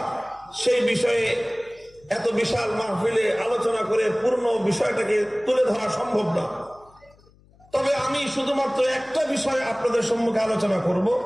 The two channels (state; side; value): noise; left; hum, 29 dB below the sound